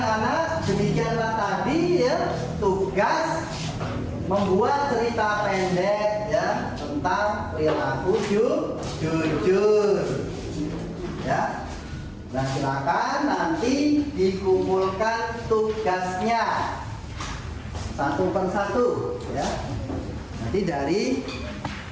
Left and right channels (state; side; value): identical; both; correlation 1.00